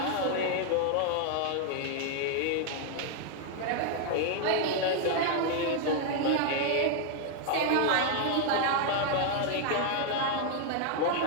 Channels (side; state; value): both; different; correlation 0.00